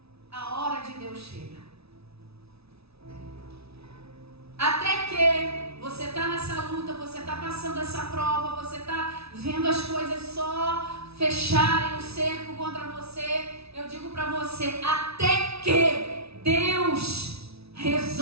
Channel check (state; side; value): late; left; 0.78 ms